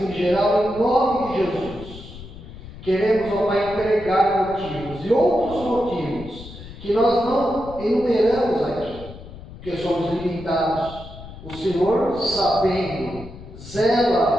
em geral, em nome de Jesus. Queremos, ó Pai, entregar motivos e outros motivos que nós não enumeramos aqui, porque somos limitados. O Senhor, sabendo,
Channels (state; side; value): noise; left; rumble, 15 dB below the sound